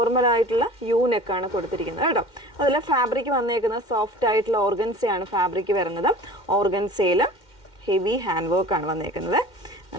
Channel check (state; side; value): late; right; 2.1 ms